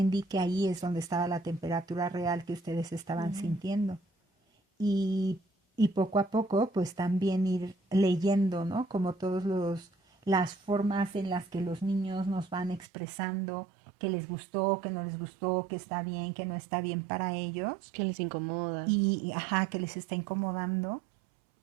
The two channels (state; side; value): drops out; left; at 12.9 s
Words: que ahí es donde estaba la temperatura real que ustedes estaban Ujú. sintiendo. Y, y poco a poco, pues también ir leyendo, ¿no? Como todos las formas en las que los niños nos van expresando que les gustó, que no les gustó, que está bien, que no está bien para ellos Que les incomoda. y ajá, que les está incomodando